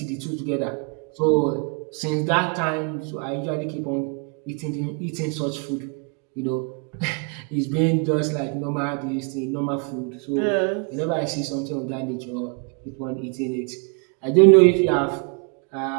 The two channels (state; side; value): quieter; left; 36.4 dB